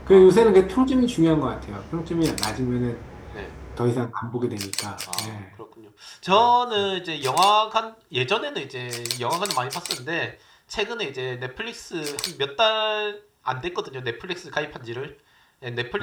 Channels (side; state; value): both; identical; correlation 1.00